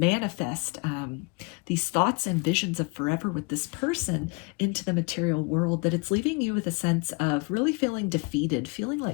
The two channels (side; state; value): right; quieter; 30.1 dB